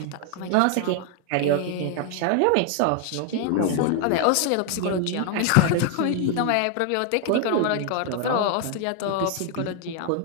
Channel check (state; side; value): different; both; correlation 0.01